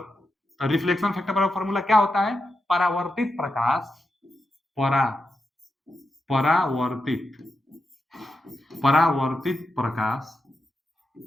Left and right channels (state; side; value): normal; both; correlation 0.88